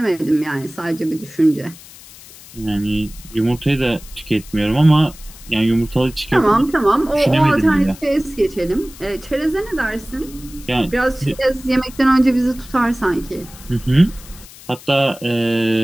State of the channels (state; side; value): noise; left; hiss, 19 dB below the sound